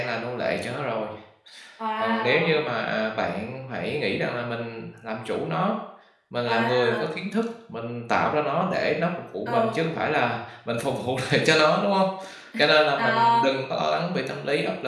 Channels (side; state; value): both; identical; correlation 1.00